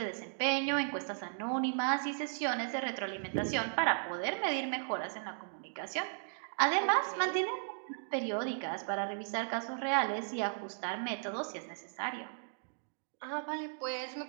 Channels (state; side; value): silent; left; digital silence